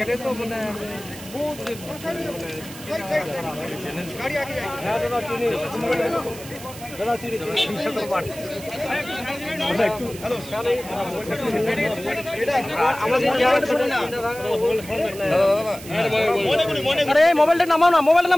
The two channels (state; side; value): noise; right; hiss, 15 dB below the sound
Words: তো মানে মোবাইলটা নামাও না, মোবাইলটা